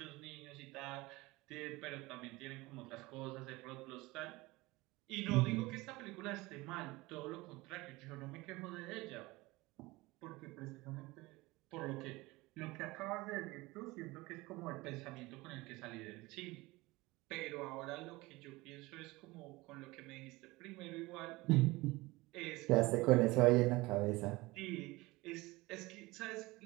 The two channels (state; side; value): quieter; left; 21.4 dB